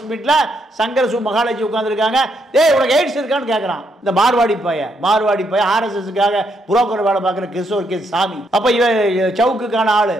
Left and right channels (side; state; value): both; normal; correlation 0.76